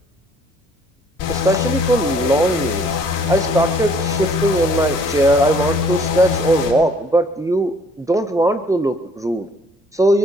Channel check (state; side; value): normal; both; correlation 0.59